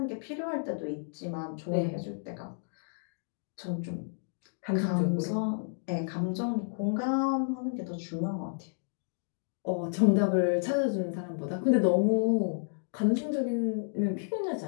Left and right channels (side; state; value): right; silent; digital silence